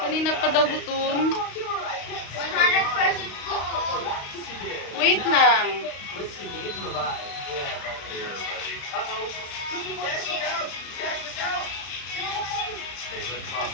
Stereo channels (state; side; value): late; right; 35 ms